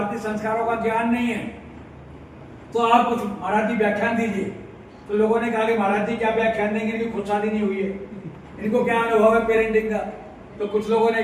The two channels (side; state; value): both; identical; correlation 1.00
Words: संस्कारों का ज्ञान नहीं है, तो आप कुछ मराठी व्याख्यान दीजिए। तो लोगों ने कहा कि महाराज जी क्या व्याख्यान देंगे, इनकी खुद शादी नहीं हुई है, इनको क्या अनुभव है पेरेंटिंग का। तो कुछ लोगों ने